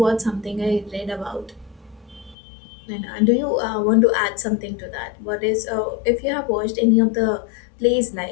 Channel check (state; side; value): drops out; right; at 2.4 s